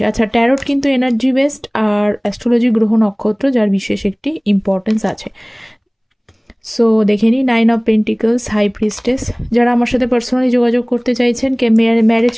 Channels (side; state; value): both; identical; correlation 1.00